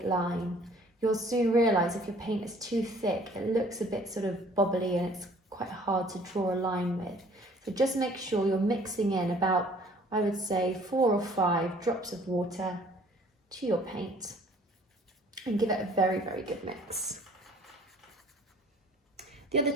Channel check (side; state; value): both; normal; correlation 0.55